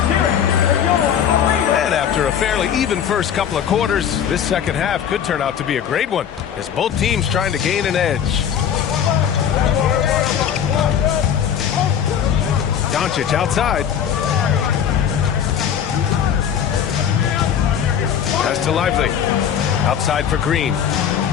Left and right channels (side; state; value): right; quieter; 8.7 dB